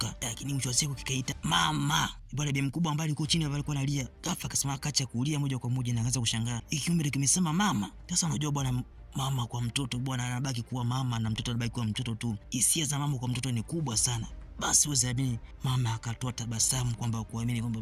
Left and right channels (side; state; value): both; identical; correlation 1.00